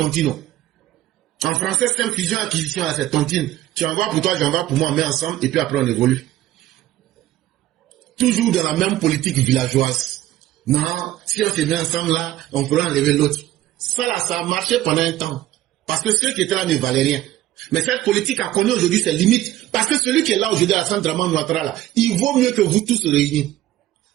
En français, c'est une fusion-acquisition là, c'est tontine. Tu envoies pour toi, j'envoie pour moi, on met ensemble, et puis après on évolue. Toujours dans la même politique villageoise. Non, si on se met ensemble là, on pourra enlever l'autre. Ça là, ça a marché pendant un temps. Parce que ceux qui étaient là ne valaient rien. Mais cette politique a connu aujourd'hui ses limites. Parce que celui qui est là aujourd'hui à Alassane Dramane Ouattara, là, il vaut mieux que vous tous réunis.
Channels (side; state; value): left; quieter; 14.4 dB